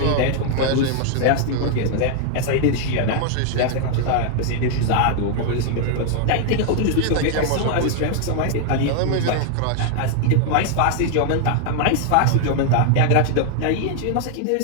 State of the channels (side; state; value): both; different; correlation 0.00